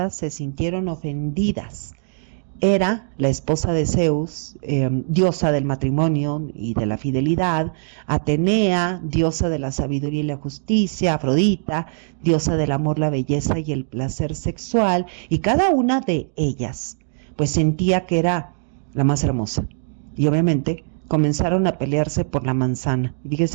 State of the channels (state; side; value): silent; left; digital silence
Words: se sintieron ofendidas. Era la esposa de Zeus, diosa del matrimonio y de la fidelidad; Atenea, diosa de la sabiduría y la justicia; Afrodita, diosa del amor, la belleza y el placer sexual, y cada una de ellas pues sentía que era la más hermosa. Y obviamente comenzaron a pelearse por la manzana.